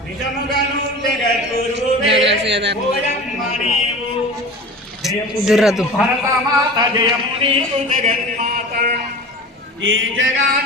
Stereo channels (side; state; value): both; normal; correlation 0.35